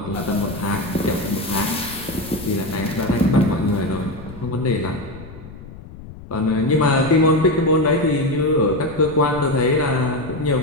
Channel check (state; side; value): noise; left; rumble, 16 dB below the sound